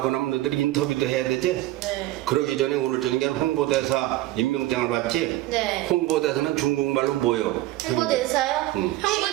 나면 너희들이 인터뷰도 해야 되지? 네. 그러기 전에 오늘 저녁에 홍보대사 임명장을 받지? 네. 홍보대사는 중국말로 뭐요? 홍보대사요? 응.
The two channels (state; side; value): quieter; left; 16.5 dB